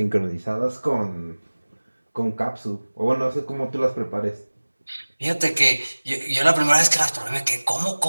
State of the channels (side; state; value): both; inverted; correlation -1.00